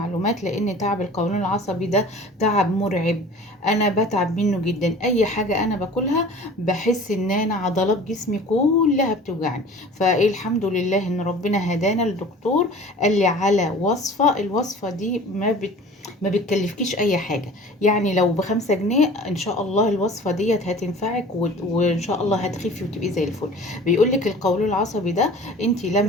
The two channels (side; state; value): both; normal; correlation 0.43